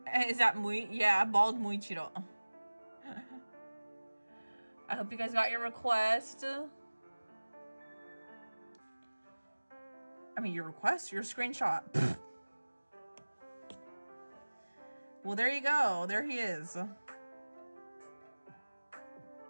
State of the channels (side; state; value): both; inverted; correlation -1.00